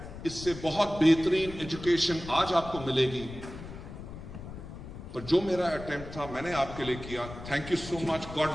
इससे बहुत बेहतरीन एजुकेशन आज आपको मिलेगी, पर जो मेरा अटेम्प्ट था मैंने आपके लिए किया। Thank you so much,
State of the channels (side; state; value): left; noise; rumble, 12 dB below the sound